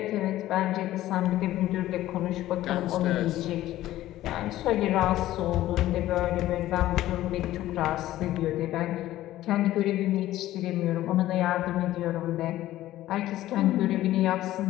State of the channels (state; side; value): quieter; right; 14.7 dB